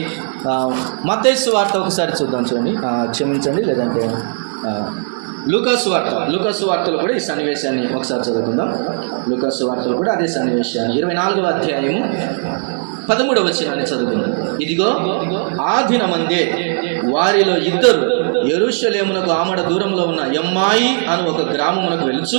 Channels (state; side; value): silent; left; 56 dB below the other